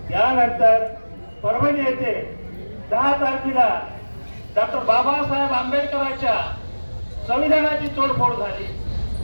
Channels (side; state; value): both; inverted; correlation -1.00